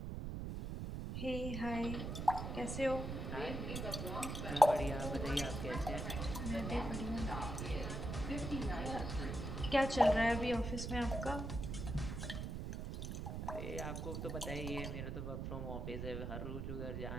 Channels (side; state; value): right; noise; rumble, 4 dB below the sound